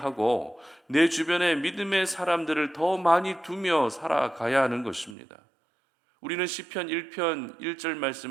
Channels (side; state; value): left; drops out; at 5.2 s